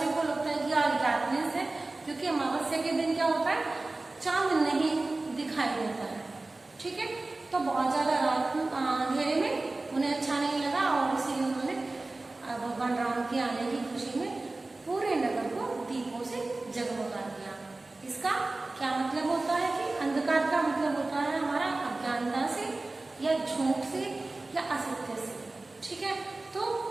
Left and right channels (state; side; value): quieter; left; 3.1 dB